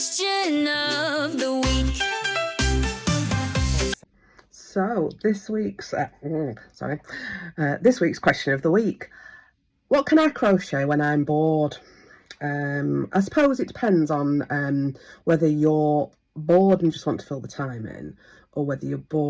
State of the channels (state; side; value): identical; both; correlation 1.00